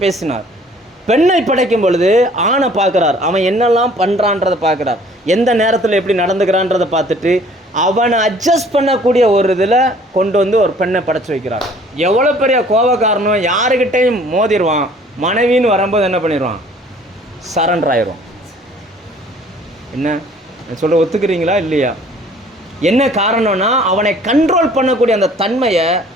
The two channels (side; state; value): both; normal; correlation 0.54